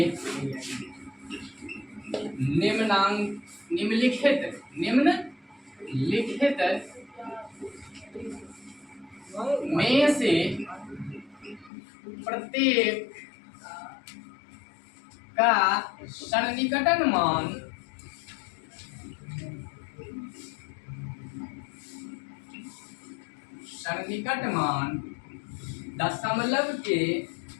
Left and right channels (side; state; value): right; drops out; at 11.7 s